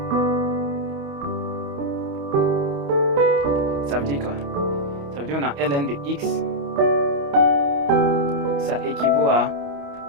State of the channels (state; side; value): late; left; 28 ms